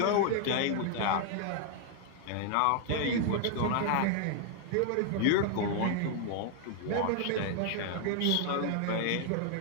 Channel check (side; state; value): both; different; correlation 0.00